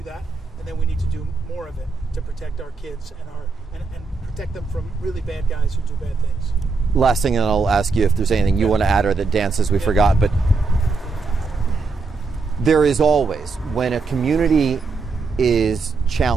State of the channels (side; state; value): left; quieter; 4.2 dB